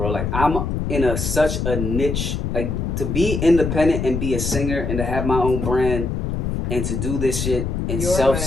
Like, I'm in such a niche, like, to be independent and be a singer and to have my own brand and to do this shit and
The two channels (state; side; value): noise; left; rumble, 2 dB below the sound